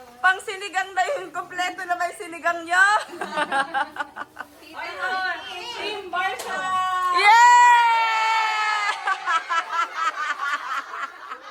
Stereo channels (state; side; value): identical; both; correlation 1.00